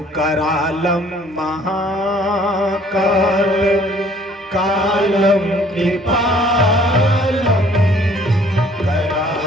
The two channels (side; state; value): both; normal; correlation 0.58